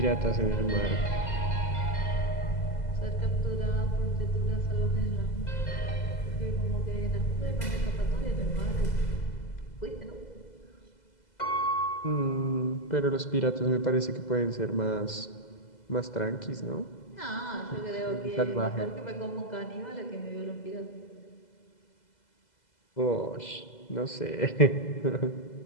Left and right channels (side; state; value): right; late; 2.0 ms